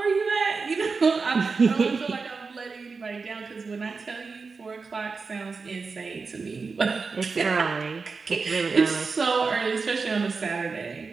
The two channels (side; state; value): left; quieter; 4.6 dB